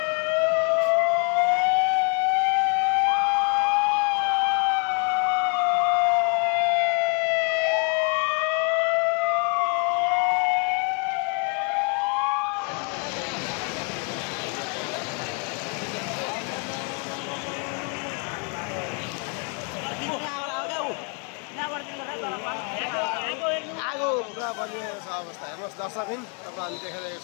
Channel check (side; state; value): right; quieter; 37.8 dB